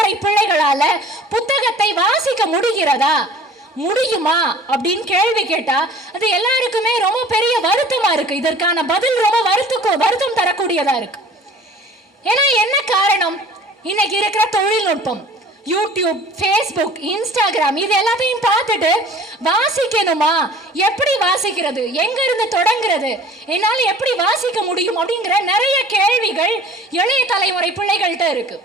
பிள்ளைகளால புத்தகத்தை வாசிக்க முடிகிறதா, முடியுமா அப்படின்னு கேள்வி கேட்டா அது எல்லாருக்குமே ரொம்ப பெரிய வருத்தமா இருக்கு. இதற்கான பதில் ரொம்ப வருத்தம் தரக்கூடியதா இருக்கு. ஏன்னா என்ன காரணம்? இன்னைக்கு இருக்கிற தொழில்நுட்பம், யூடியூப், ஃபேஸ்புக், இன்ஸ்டாகிராம், இது எல்லாத்தையும் பார்த்துட்டு வாசிக்கணுமா, எப்படி வாசிக்கிறது, எங்க இருந்து தொடங்குறது, என்னால் எப்படி வாசிக்க முடியும் அப்படிங்கிற நிறைய கேள்விகள் இளைய தலைமுறை பிள்ளைகள்கிட்ட இருக்கு.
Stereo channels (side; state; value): both; normal; correlation 0.47